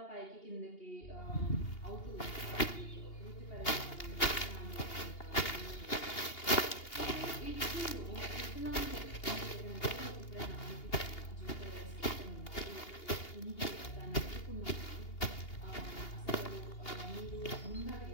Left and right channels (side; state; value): right; late; 2.8 ms